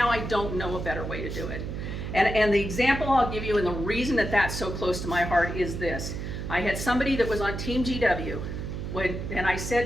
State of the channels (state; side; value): noise; right; hum, 5 dB below the sound